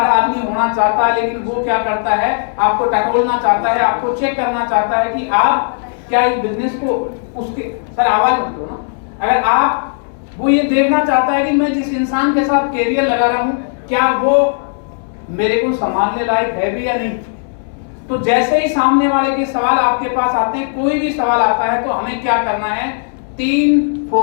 आदमी होना चाहता है, लेकिन वो क्या करता है, आपको टटोलना चाहता है, आपको चेक करना चाहता है कि आप क्या इस बिजनेस को उसके, सर आवाज मत करो ना, अगर आप वो ये देखना चाहता है कि मैं जिस इंसान के साथ कैरियर लगा रहा हूं क्या वो मेरे को संभालने लायक है भी या नहीं। तो जैसे ही सामने वाले के सवाल आपके पास आते हैं, कोई भी सवाल आता है तो हमें क्या करना है, 3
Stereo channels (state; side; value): silent; right; digital silence